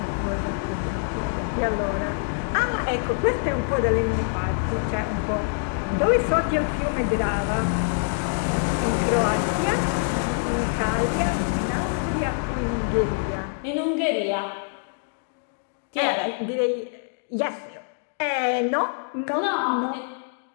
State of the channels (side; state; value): right; silent; digital silence